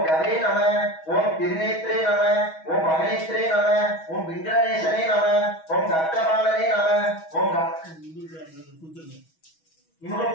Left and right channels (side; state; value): right; late; 6.2 ms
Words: கவே நம, ஓம் திருநேத்ரே நம, ஓம் பகனேத்ரே நம, ஓம் விங்கடேசனே நம, ஓம் கர்க்கபாலனே நம, ஓம்